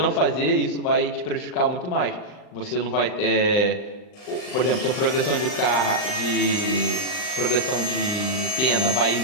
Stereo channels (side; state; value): right; late; 39 ms